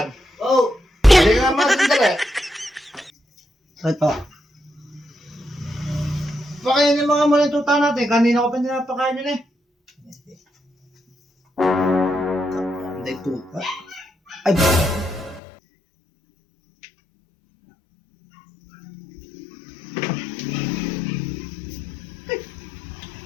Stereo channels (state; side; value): drops out; right; at 15.4 s